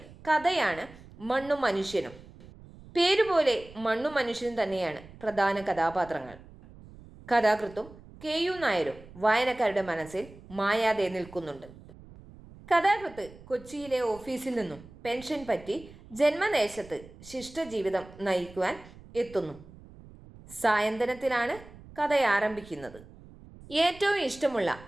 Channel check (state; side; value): noise; right; rumble, 20 dB below the sound